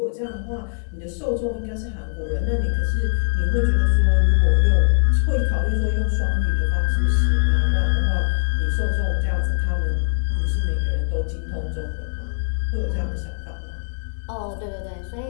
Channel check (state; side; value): silent; right; 57 dB below the other